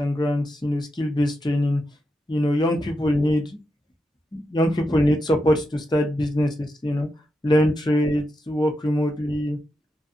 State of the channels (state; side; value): normal; both; correlation 0.86